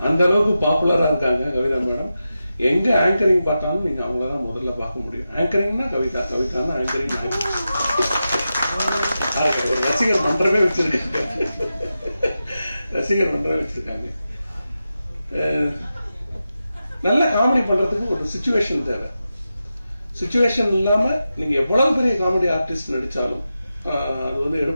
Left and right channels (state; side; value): inverted; both; correlation -0.91